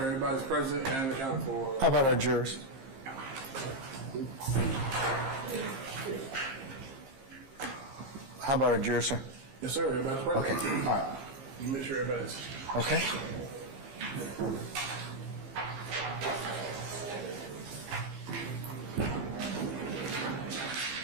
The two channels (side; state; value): left; late; 15 ms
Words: present and accounted for. How about our jurors? How about our jurors, sir? Yes, sir. Everybody's present. Okay, all right. You make sure everybody's. Okay.